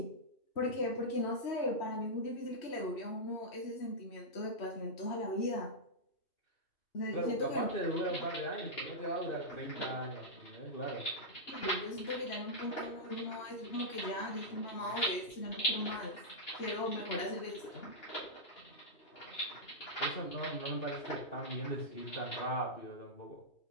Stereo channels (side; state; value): right; late; 3.1 ms